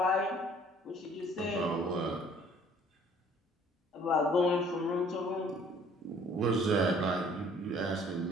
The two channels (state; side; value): normal; both; correlation 0.56